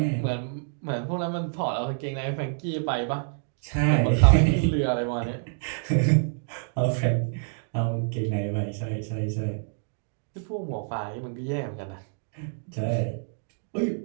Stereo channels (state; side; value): silent; left; digital silence